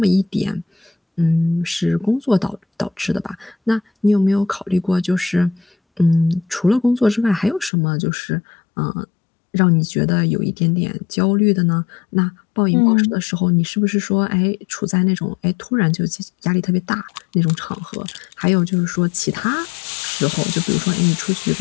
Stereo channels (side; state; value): right; drops out; at 7.7 s